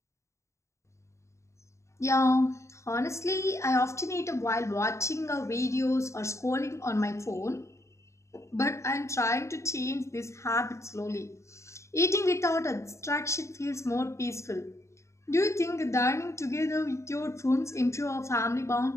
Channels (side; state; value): right; late; 0.14 ms